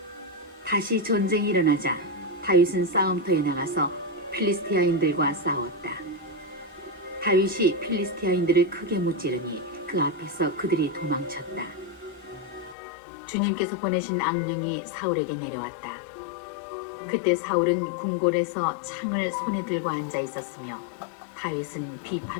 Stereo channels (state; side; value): drops out; right; at 12.8 s